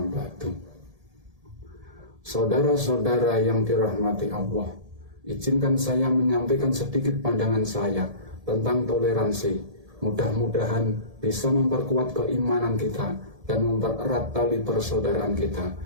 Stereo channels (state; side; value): late; left; 1.7 ms